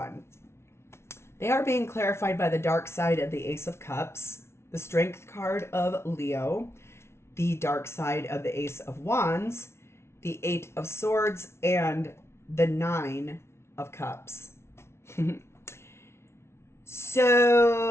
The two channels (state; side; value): late; right; 0.13 ms